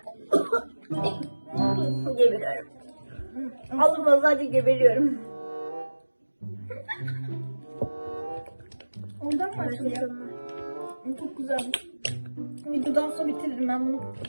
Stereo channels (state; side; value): inverted; both; correlation -1.00